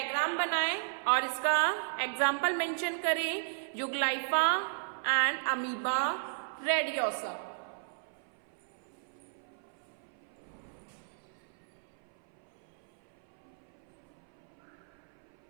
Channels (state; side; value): silent; left; 55 dB below the other